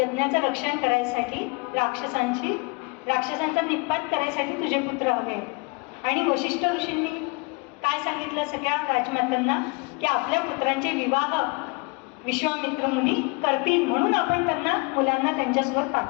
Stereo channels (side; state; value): right; quieter; 30.0 dB